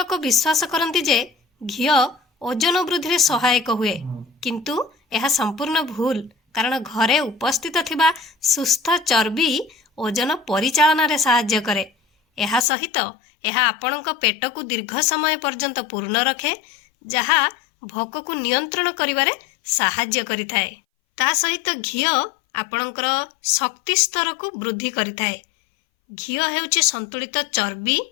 विश्वास करती जे घिओ ओजन वृद्धि रे सहायक हुए, किंतु यह संपूर्ण भूल। कारण घरे उपस्थित थिबा सुस्थ चर्बी ओजन परिचालन रे सहाय्य करे। यह सहित यह आपणक पेट को दीर्घ समय पर्यंत पूर्ण रखे, जहा भोक को नियंत्रण करिवारे सहाय्य करिथाए। ता सहित घिओ आपणकर शक्ति स्तर को वृद्धि करिथाए। घिओ हेउची संतुलित चर्बी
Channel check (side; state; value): right; drops out; at 12.7 s